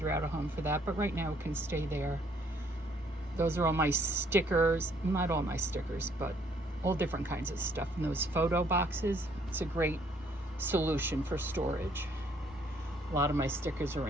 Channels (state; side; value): normal; both; correlation 0.65